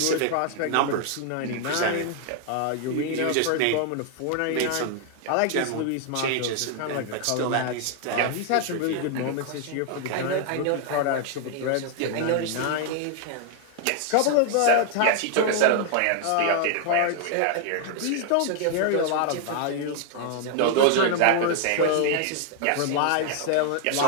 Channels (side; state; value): both; different; correlation 0.00